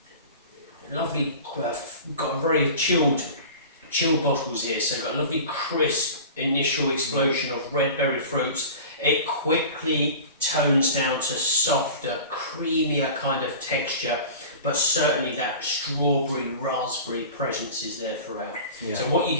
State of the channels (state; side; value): inverted; both; correlation -0.37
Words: Lovely, got a very chilled bottles here, so got a lovely crisp initial explosion of red berry fruits. It quickly tones down to softer, creamier kind of texture, but certainly that strawberry raspberry presence is there throughout. Yeah. So what you